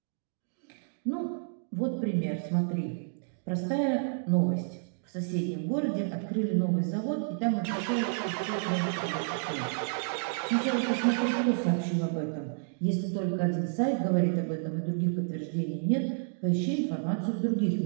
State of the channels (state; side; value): silent; left; digital silence